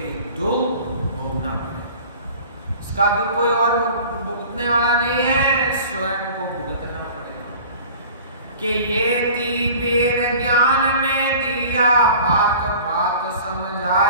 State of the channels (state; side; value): inverted; both; correlation -0.43